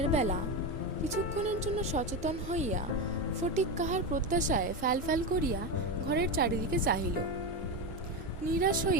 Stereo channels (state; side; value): normal; both; correlation 0.15